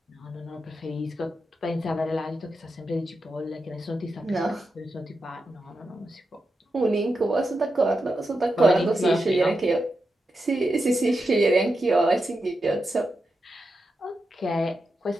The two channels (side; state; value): both; normal; correlation 0.88